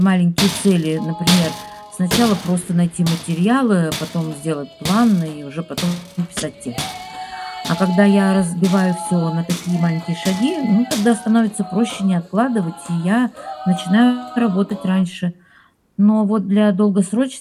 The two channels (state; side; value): identical; both; correlation 1.00